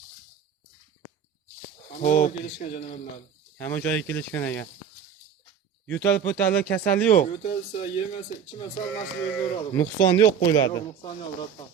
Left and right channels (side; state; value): left; quieter; 7.6 dB